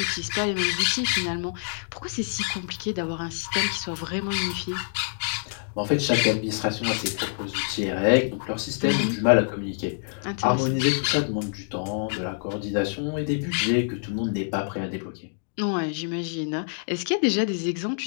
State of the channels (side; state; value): right; silent; digital silence